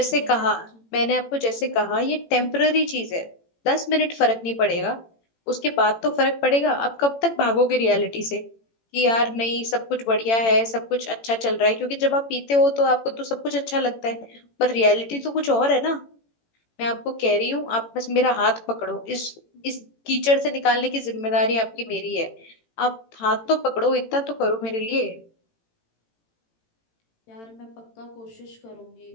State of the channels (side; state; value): right; late; 18 ms